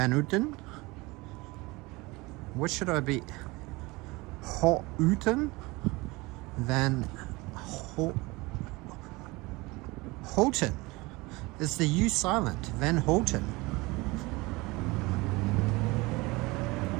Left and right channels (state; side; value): quieter; left; 23.1 dB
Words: Houten? What should I be? Houten? Van Houten. Is the U silent? Van Houten.